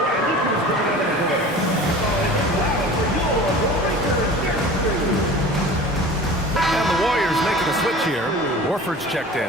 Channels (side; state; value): both; normal; correlation 0.39